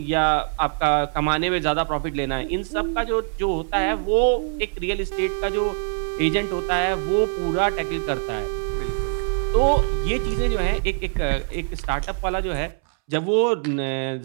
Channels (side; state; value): left; silent; 63 dB below the other